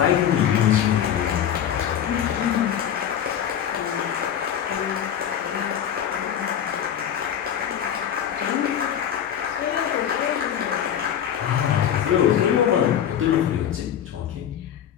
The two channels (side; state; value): right; quieter; 9.5 dB